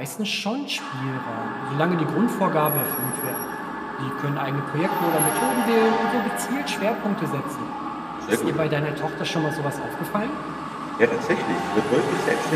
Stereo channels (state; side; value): identical; both; correlation 1.00